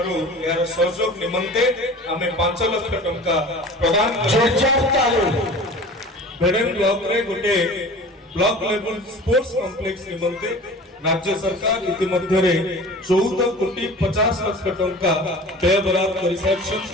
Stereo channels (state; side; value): normal; both; correlation 0.40